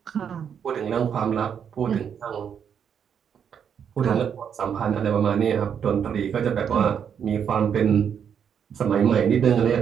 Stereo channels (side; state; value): left; quieter; 7.9 dB